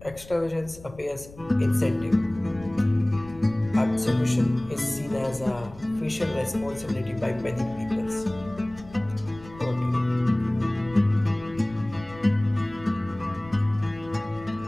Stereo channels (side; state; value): left; noise; rumble, 19 dB below the sound